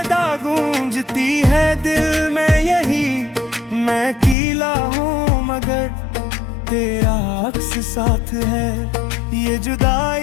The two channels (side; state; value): right; drops out; at 4.4 s